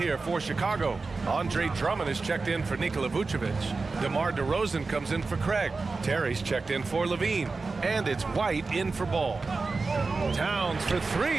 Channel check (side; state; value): left; quieter; 4.0 dB